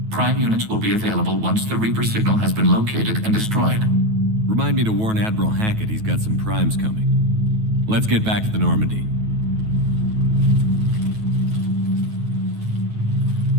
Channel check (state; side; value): late; left; 9.3 ms